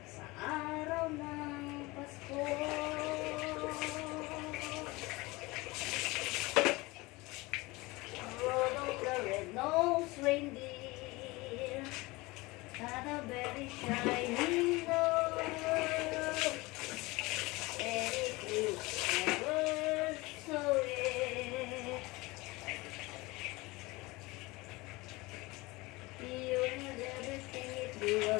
sa araw ng Pasko. Rudolph the red-nosed reindeer had a very shiny nose, and it was never so red. He was everything it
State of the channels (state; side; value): quieter; right; 22.5 dB